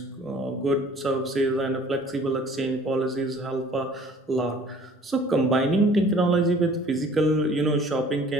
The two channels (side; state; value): both; normal; correlation 0.52